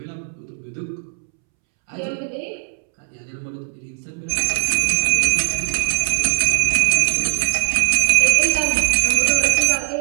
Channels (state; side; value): silent; left; 66 dB below the other